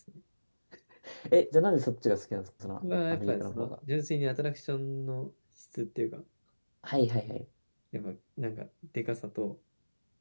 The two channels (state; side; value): inverted; both; correlation -1.00